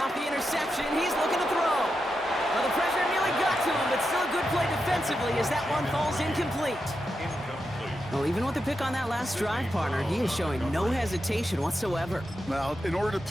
the interception. He's looking to throw. Well, the pressure nearly got to him, but still a good play defensively as that one falls incomplete. Well, even with the pick on that last drive, partner, he is showing no hesitation whatsoever. Well, in order to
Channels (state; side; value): normal; both; correlation 0.87